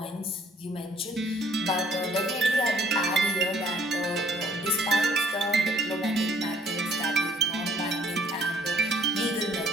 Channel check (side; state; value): both; normal; correlation 0.60